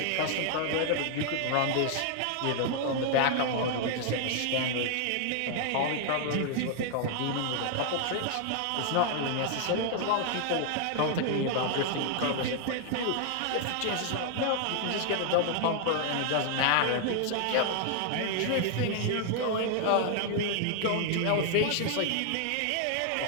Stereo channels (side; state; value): both; different; correlation 0.00